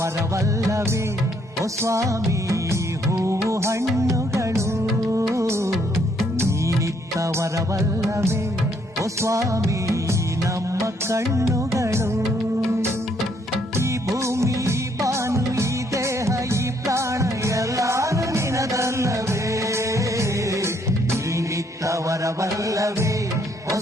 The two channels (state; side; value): normal; both; correlation 0.70